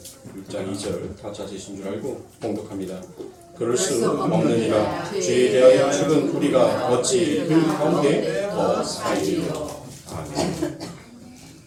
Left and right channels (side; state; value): both; identical; correlation 1.00